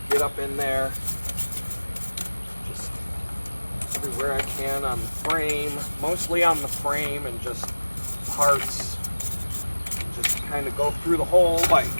get up in there, just everywhere I can on the frame, mostly on the frame, and just parts, just kind of go through the whole bike,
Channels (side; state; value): both; inverted; correlation -1.00